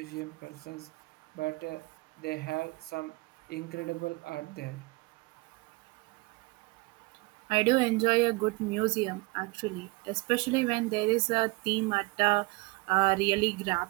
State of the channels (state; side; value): quieter; left; 24.0 dB